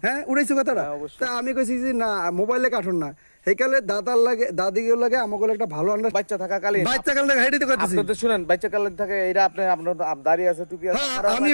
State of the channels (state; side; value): inverted; both; correlation -1.00